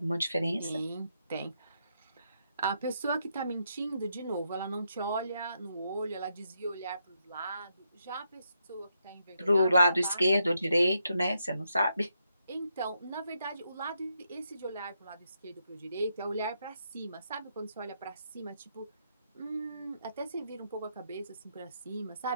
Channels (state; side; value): inverted; both; correlation -0.80